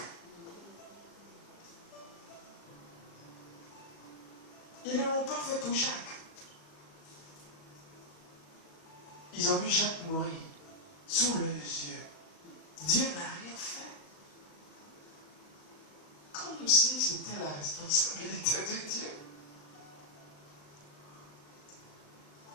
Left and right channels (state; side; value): late; right; 37 ms